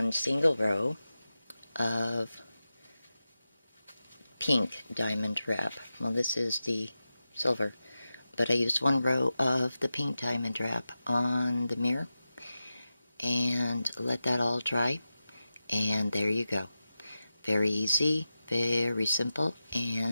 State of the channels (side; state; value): both; inverted; correlation -0.93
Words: single row of pink diamond wrap. Well, this is the silver, but I used 1 row of the pink diamond wrap on the mirror and let that all dry, and there you go. Very easy, very simple,